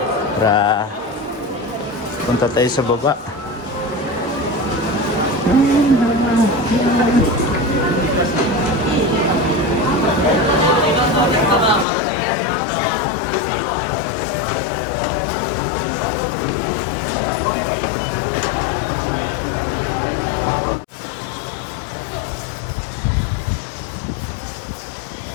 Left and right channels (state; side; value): drops out; right; at 11.9 s